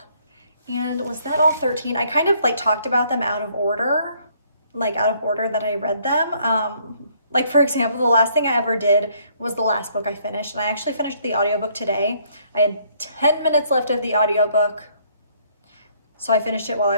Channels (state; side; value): inverted; both; correlation -0.65